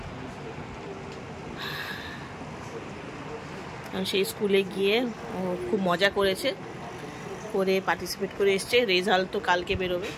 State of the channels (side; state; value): both; identical; correlation 1.00